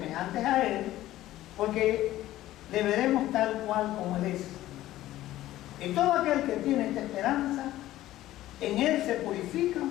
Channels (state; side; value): quieter; right; 14.9 dB